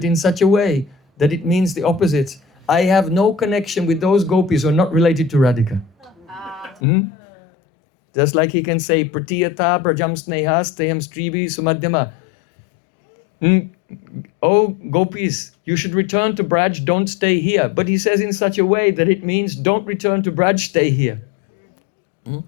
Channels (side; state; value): right; drops out; at 6.8 s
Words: in such a way that it means the opposite. I have no connection with those gopis who are not related to Radhika. Just like he can say, Pratiyata prajam snehas teham stribi sumadhyama. Oh, gopis, you should return to Braj, don't stay here. But he says in such a way that it means don't return to Braj, stay here.